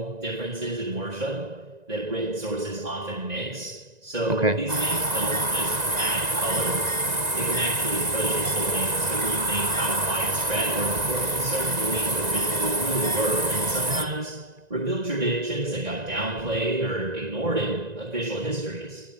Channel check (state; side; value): late; left; 1.9 ms